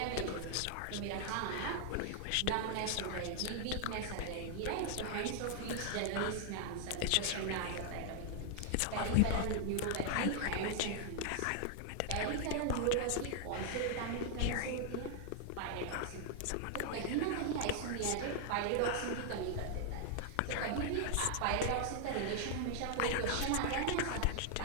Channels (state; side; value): different; both; correlation 0.00